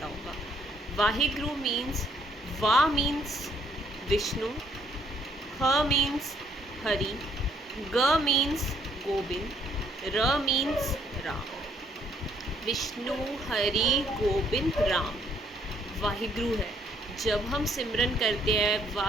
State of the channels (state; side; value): normal; both; correlation 0.67